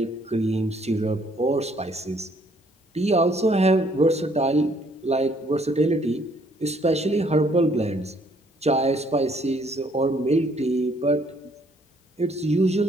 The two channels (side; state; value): both; normal; correlation 0.65